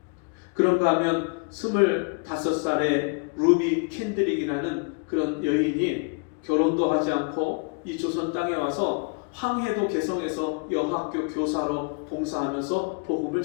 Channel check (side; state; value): right; quieter; 35.5 dB